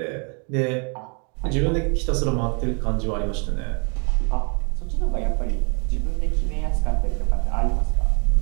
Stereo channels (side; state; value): left; quieter; 37.1 dB